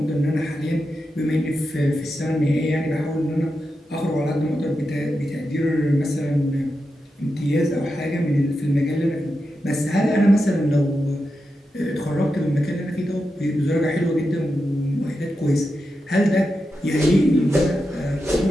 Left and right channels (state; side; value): normal; both; correlation 0.89